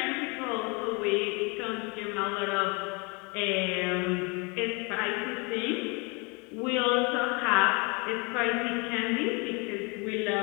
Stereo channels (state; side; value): quieter; right; 30.5 dB